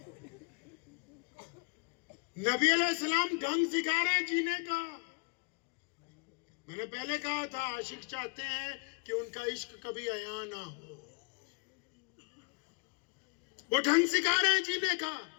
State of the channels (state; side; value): quieter; right; 30.4 dB